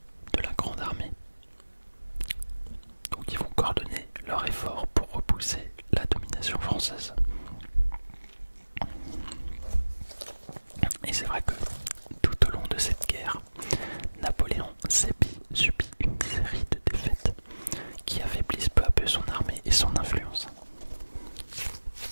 de la grande armée. Donc ils vont coordonner leurs efforts pour repousser la domination française. Et c'est vrai que tout au long de cette guerre, Napoléon subit une série de défaites qui affaiblissent peu à peu son armée et son influence.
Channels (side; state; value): both; inverted; correlation -1.00